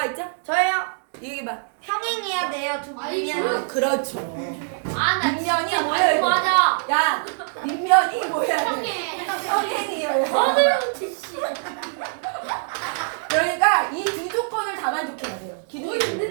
있죠? 저요. 얘기해봐. 평행해야 돼요. 두 아니, 분이면. 그렇죠. 아나 밑면이 뭐여야 돼? 맞아. 야, 밑면이 뭐여야 돼? 형이. 평행이어야 돼. 그러니까 이 두 조건을 다 만족해야 돼요. 기둥이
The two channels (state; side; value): silent; left; digital silence